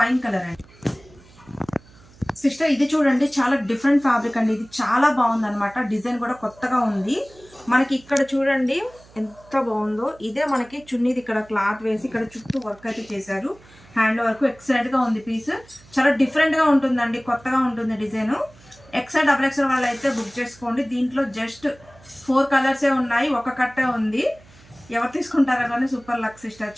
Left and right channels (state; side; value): noise; right; hum, 25 dB below the sound